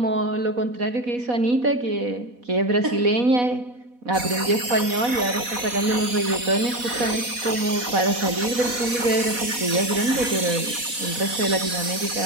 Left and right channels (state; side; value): late; left; 4.1 ms